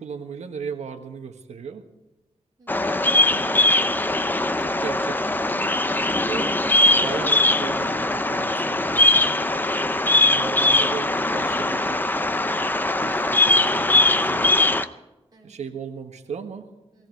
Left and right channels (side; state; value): both; normal; correlation 0.08